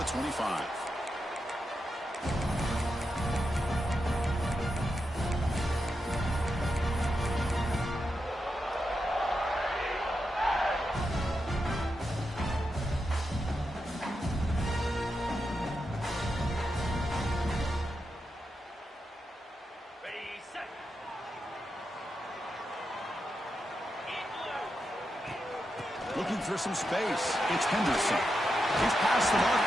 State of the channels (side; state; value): both; normal; correlation 0.87